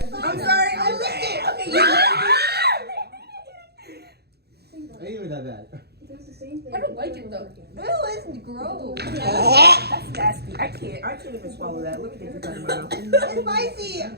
I'm sorry. Okay, Ain't even that bad. I don't like it though. Ew, it's gross. That's nasty. I can't even swallow that. Let me get this out of my mouth. It's spicy.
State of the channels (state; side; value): late; left; 0.47 ms